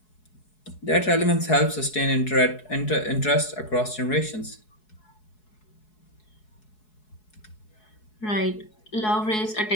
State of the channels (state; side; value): late; right; 4.7 ms